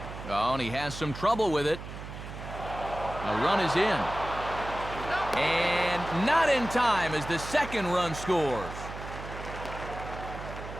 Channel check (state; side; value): noise; right; hum, 10 dB below the sound